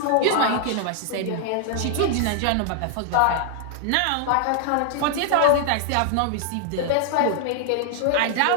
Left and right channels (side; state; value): both; different; correlation 0.00